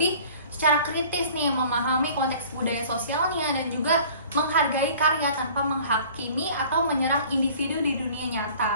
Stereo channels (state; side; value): inverted; both; correlation -0.48